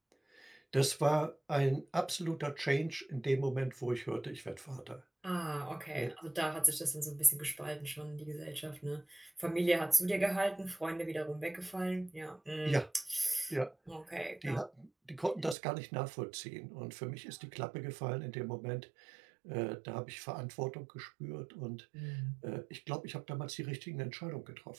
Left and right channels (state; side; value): drops out; left; at 15.6 s